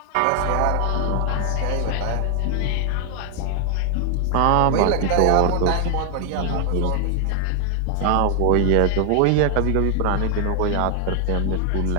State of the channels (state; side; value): different; both; correlation 0.00